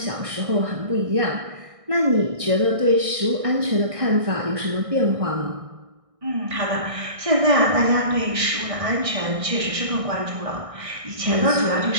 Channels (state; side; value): late; left; 1.6 ms